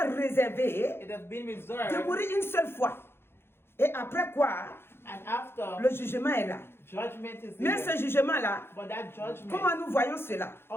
réservé it has been de reserved, mourir une seule fois. Et après quoi, and after, le jugement est là. judgment is Mais there. ce jugement-là, But that judgment, comment nous voyons cela?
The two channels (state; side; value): late; right; 0.11 ms